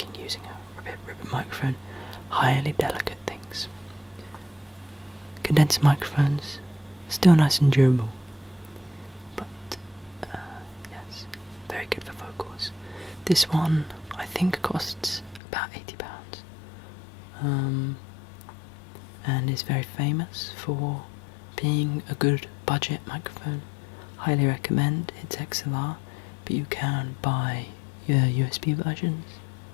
using a ribbon microphone. Highly delicate things. Condenser microphones, still nice and durable, but yes, very good for vocals. This one I think costs about £80, and is very famous for being a good budget microphone. Highly recommend. It's XLR, but you can buy your USB versions.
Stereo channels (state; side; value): drops out; right; at 15.4 s